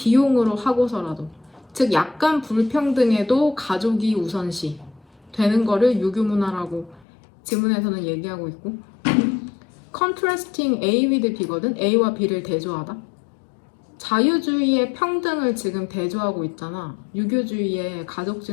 하고서라도, 즉 약간 불평등에도 가족이 우선시 되는 거를 유교문화라고 지문에서는 얘기하고 있고, contrasting A with B거든. A와 B를 대조하다. 자유주의의 평등을 지금 대조하고 있잖아. 유교주의의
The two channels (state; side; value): drops out; right; at 7.1 s